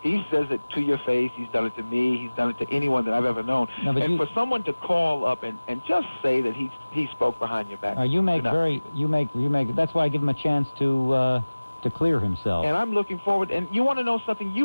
He says it to your face. He's done it to me. He's done it to anyone that I've ever known. No, but and for someone to call up and just say that he spoke behind your back. you make. That's why I give him a chance to clear himself. And I'm looking forward. And you want to know something?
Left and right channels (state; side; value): inverted; both; correlation -1.00